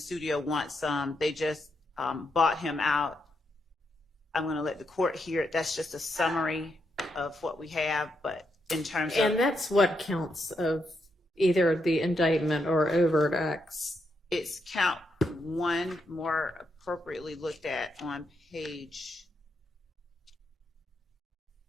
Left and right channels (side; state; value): both; normal; correlation 0.81